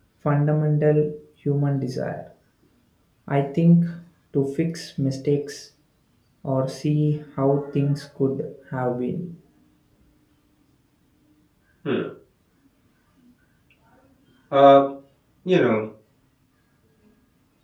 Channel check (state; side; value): identical; both; correlation 1.00